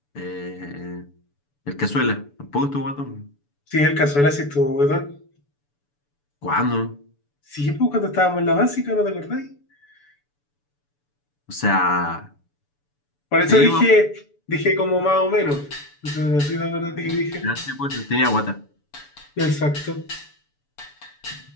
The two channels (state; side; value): late; right; 6.9 ms